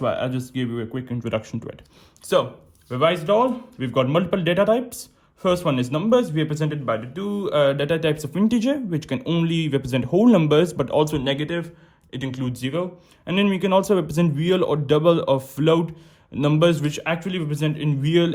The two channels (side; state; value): both; identical; correlation 1.00